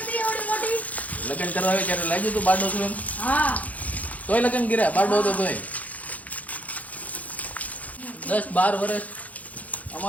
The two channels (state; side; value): late; right; 0.074 ms